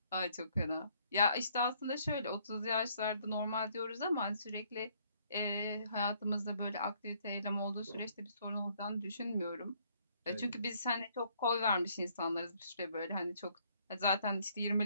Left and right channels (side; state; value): both; inverted; correlation -0.66